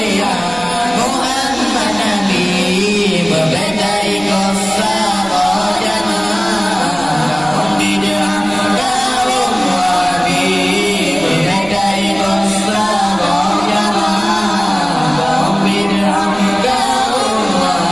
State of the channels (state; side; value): noise; right; rumble, 18 dB below the sound